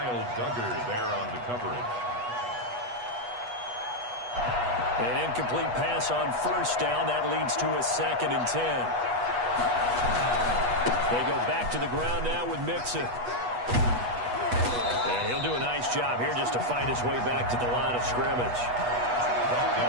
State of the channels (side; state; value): left; late; 8.2 ms